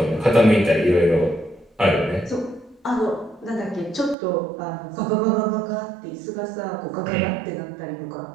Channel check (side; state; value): left; drops out; at 4.2 s